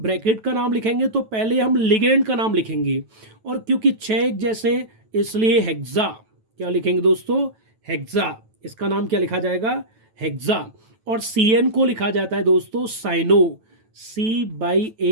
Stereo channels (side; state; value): left; late; 9.1 ms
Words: का नाम लिखेंगे तो पहले हम लिगेंड का नाम लिखेंगे, और क्योंकि 6 एक जैसे इसलिए हेक्सा क्या लिखेंगे दोस्तों, हेक्सा। इसका नाम क्या लिखा जाएगा, हेक्सा। और CN को लिखा जाता है दोस्तों साइनो,